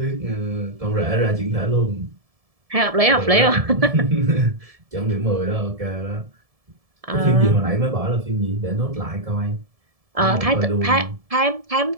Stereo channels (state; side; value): late; left; 1.7 ms